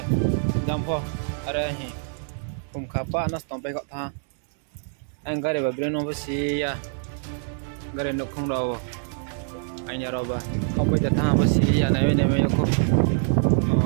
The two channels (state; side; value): silent; left; 62 dB below the other